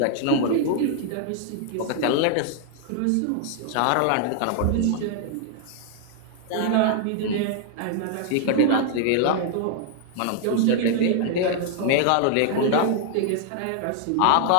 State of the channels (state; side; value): different; both; correlation 0.00